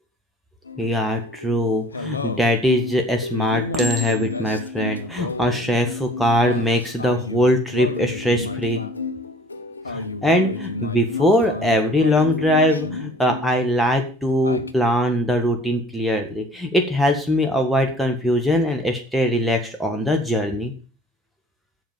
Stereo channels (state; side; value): normal; both; correlation 0.51